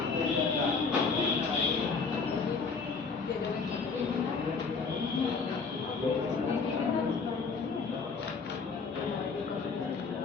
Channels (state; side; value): quieter; right; 4.9 dB